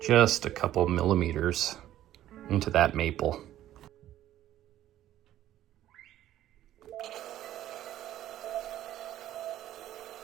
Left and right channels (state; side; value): quieter; left; 12.9 dB